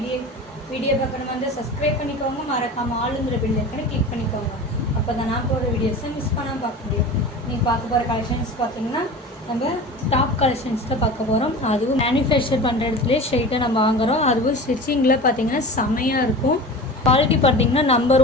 video பார்க்கணும் வந்து subscribe பண்ணிக்கோங்க, மறக்காம ஆளுங்கிற பெல் ஐக்கனை கிளிக் பண்ணிக்கோங்க. அப்போ தான் நான் போகிற வீடியோஸை மிஸ் பண்ணாமல் பார்க்க முடியும். நீங்கள் பார்க்க போகிற கலெக்ஷன்ஸ் பார்த்தீங்கன்னா நம்ம டாப் கலெக்ஷன்ஸ் தான் பார்க்க போகிறோம். அதுவும் மேனுஃபேக்சர் பண்ணுற இடத்துலேயே ஸ்ட்ரெயிட்டாக நம்ம வாங்குகிறோம். அதுவும் ஸ்டிச்சிங்கில் பார்த்தீங்கன்னா செமையாக இருக்கும். குவாலிட்டி பார்த்தீங்கன்னா நம்பர்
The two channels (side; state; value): both; normal; correlation 0.34